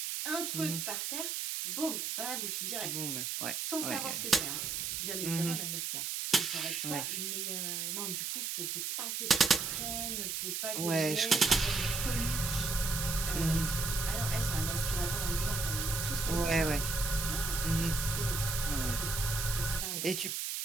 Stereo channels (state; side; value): noise; right; hiss, 2 dB below the sound